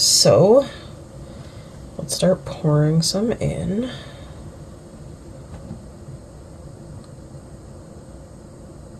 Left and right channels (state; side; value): identical; both; correlation 1.00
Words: let's start pouring some in.